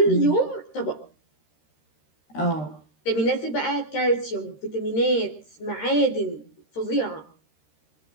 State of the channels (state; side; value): late; right; 13 ms